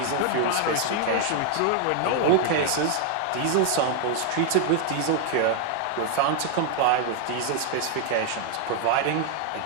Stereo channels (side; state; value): both; different; correlation 0.00